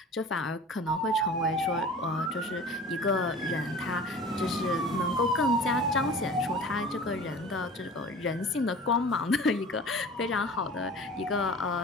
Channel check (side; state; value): both; normal; correlation 0.40